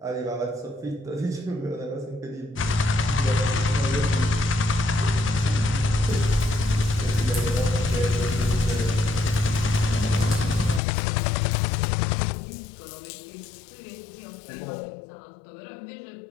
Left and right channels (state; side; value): drops out; right; at 10.8 s